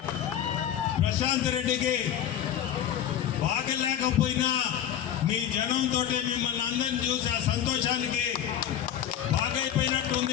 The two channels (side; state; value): right; quieter; 10.2 dB